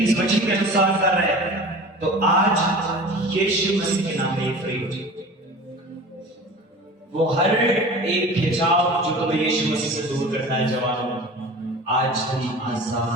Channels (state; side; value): normal; both; correlation 0.38